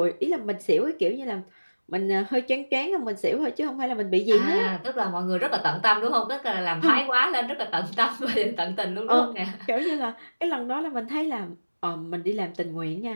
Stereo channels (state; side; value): inverted; both; correlation -1.00